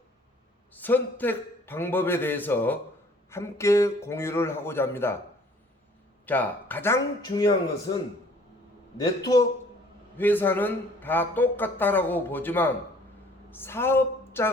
선택 방법에 대해서 함께 공유를 하고자 합니다. 자, 가장 중요한 것은 네트워크 회사는 다 똑같다라고 보지만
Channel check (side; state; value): both; normal; correlation 0.56